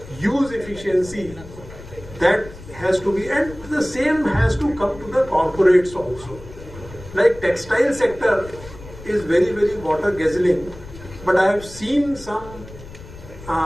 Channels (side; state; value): left; noise; rumble, 17 dB below the sound